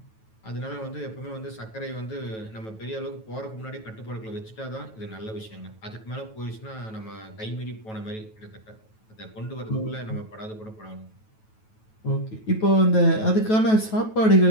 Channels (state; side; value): late; right; 9.2 ms